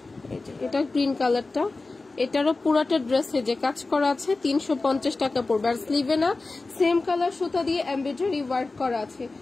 এই যে এটা গ্রিন কালারটা, এটারও পুরাটা ড্রেসে যে কাজ করা আছে 350 টাকা পড়বে। আর স্লিভে না সেম কালার সুতা দিয়ে এমব্রয়ডারি ওয়ার্ক করা আছে,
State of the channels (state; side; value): quieter; right; 3.5 dB